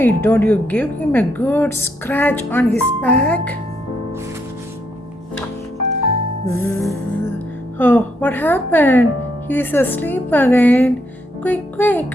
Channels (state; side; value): normal; both; correlation 0.76